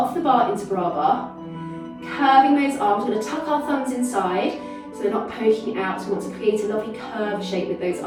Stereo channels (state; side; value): identical; both; correlation 1.00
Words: the bar into bar. Curving those arms. We're going to tuck our thumbs inside so they're not poking out. So we want to create a lovely curved shape with those